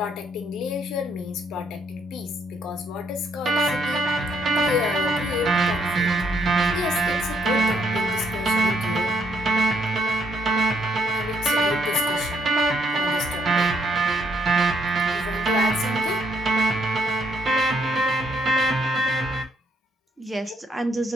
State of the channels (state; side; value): normal; both; correlation 0.72